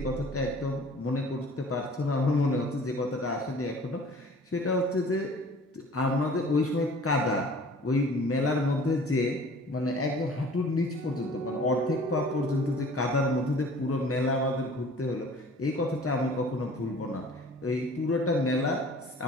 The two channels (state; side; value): normal; both; correlation 0.48